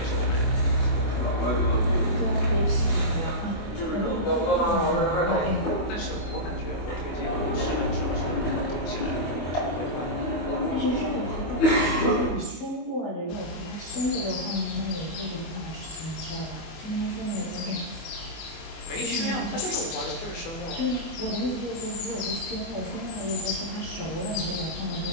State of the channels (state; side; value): late; right; 24 ms